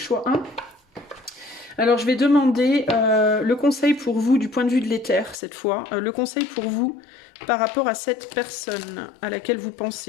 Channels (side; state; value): right; drops out; at 5.4 s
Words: 1. Alors, je vais demander le conseil pour vous du point de vue de l'éther, cette fois. Le conseil pour vous par rapport à cette personne à laquelle vous